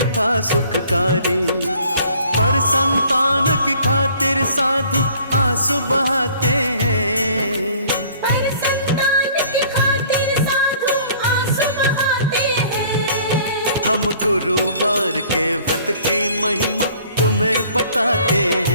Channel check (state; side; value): inverted; both; correlation -0.55